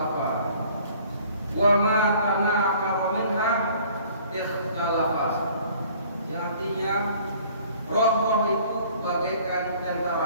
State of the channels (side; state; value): both; inverted; correlation -0.54